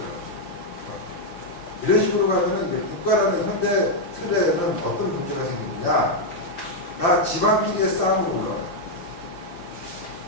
이런 식으로 가면은 이제 국가라는 현대 틀에는 어떤 문제가 생기느냐? 다 집안끼리의 싸움으로 올라가요.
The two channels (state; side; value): late; right; 5.7 ms